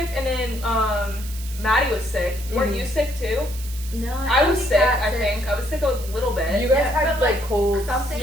and then Maddie was sick. Weren't you sick too? No, I was sick. I think I was sick a little bit. You guys had like cold. Something.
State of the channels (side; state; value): right; noise; hiss, 14 dB below the sound